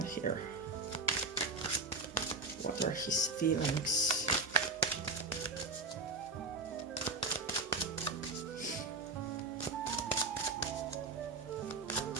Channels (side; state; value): left; quieter; 3.5 dB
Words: here. What are his feelings?